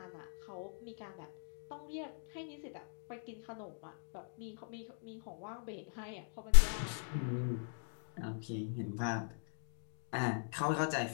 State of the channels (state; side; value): silent; right; digital silence